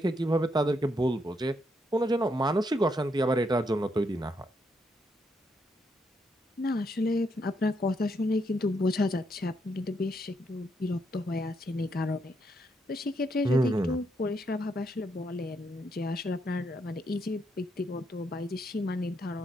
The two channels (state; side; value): normal; both; correlation 0.77